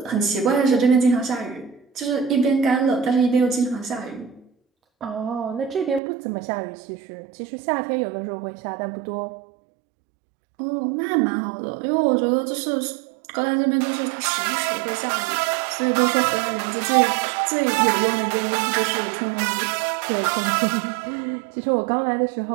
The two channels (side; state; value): left; drops out; at 6.0 s